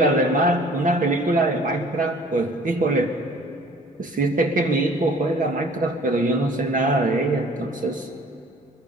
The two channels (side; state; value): both; normal; correlation 0.51